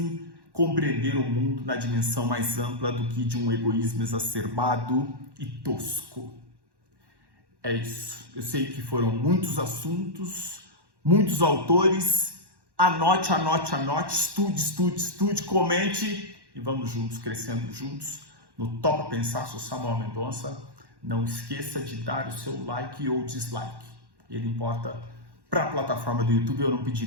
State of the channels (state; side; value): late; left; 1.1 ms